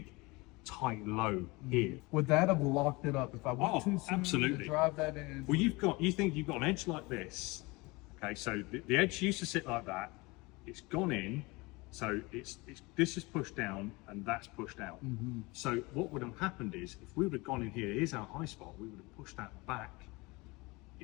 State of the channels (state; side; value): quieter; right; 24.4 dB